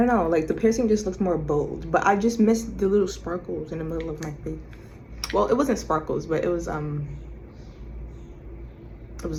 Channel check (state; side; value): identical; both; correlation 1.00